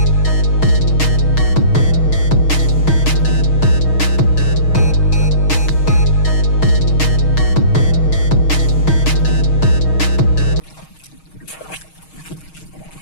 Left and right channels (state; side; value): late; right; 6.4 ms